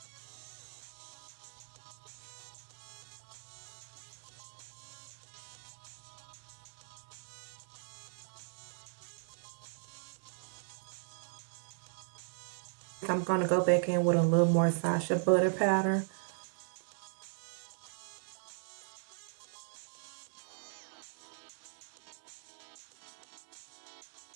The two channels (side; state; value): left; silent; 52 dB below the other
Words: I'm going to go back in with a little more Sacha Butter powder.